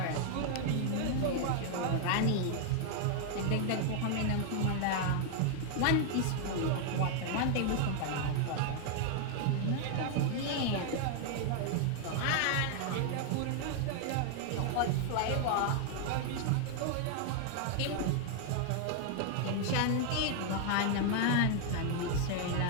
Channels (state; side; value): different; both; correlation 0.00